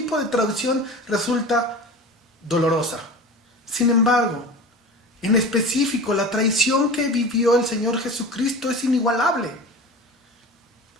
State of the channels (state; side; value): normal; both; correlation 0.34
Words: de traición resulta dolorosa. Sin embargo, en específico, la traición que vivió el Señor Jesucristo es inigualable.